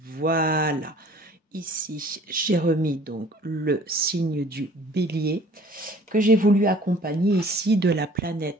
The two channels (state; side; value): normal; both; correlation 0.51